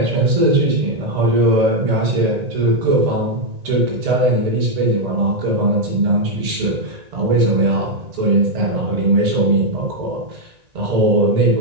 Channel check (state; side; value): late; left; 1.9 ms